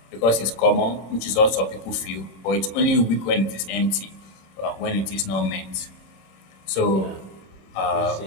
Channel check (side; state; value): right; late; 26 ms